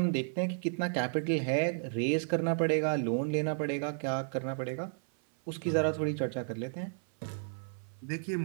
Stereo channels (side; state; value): left; silent; 56 dB below the other